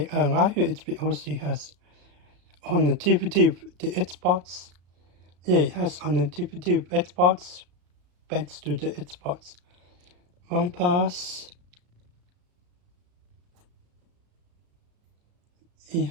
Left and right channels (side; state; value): left; late; 34 ms